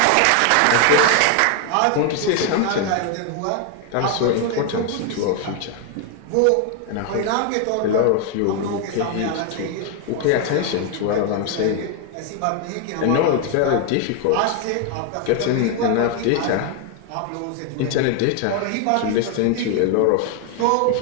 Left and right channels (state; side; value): different; both; correlation 0.01